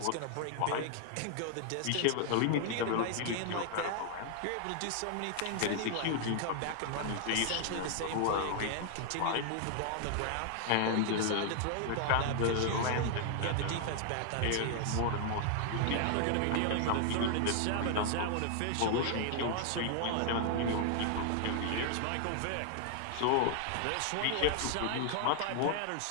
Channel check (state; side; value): different; both; correlation 0.00